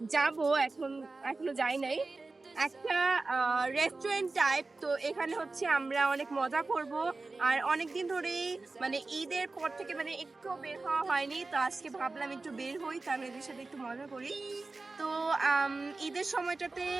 যাবো এখনো যাই নাই একটা রেস্টুরেন্ট টাইপ। তো এখানে হচ্ছে আমরা অনেক মজা করব আর অনেকদিন ধরেই মানে ঈদের পর থেকে মানে একটু বের হওয়া হয়নি, তো আজকে ভাবলাম একটু বের হই, তাদের সাথে একটু মজা করি। তো ঈদের সময়টাতে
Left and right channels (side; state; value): left; quieter; 3.5 dB